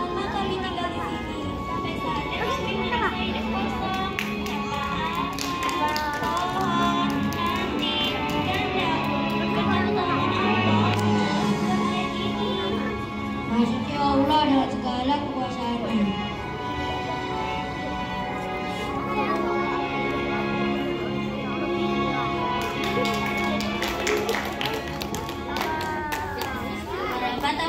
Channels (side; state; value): both; identical; correlation 1.00